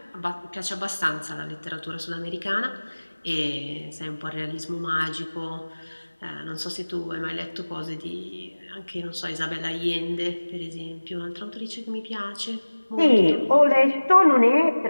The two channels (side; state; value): both; inverted; correlation -1.00